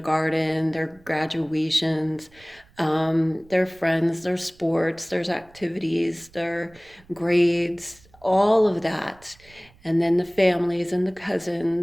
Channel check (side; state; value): right; noise; rumble, 27 dB below the sound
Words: their graduations, their friends, their sports, their activities, their grades, all of that. And then the families and the